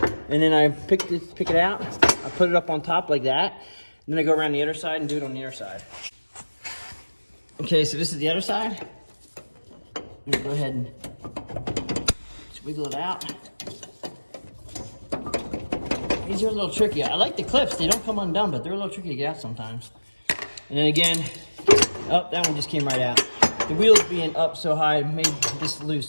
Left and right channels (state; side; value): inverted; both; correlation -1.00